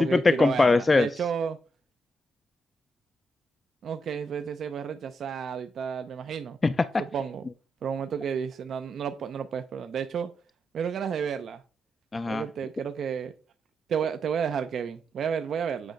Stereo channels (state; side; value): normal; both; correlation 0.83